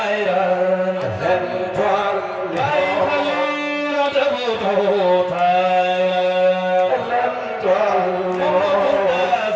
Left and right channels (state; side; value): identical; both; correlation 1.00